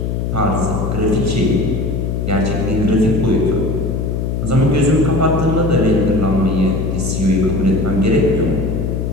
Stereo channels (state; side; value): noise; left; hum, 1 dB below the sound